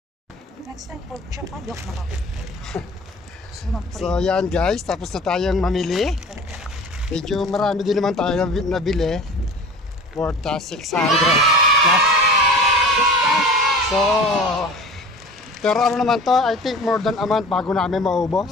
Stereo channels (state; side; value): normal; both; correlation 0.41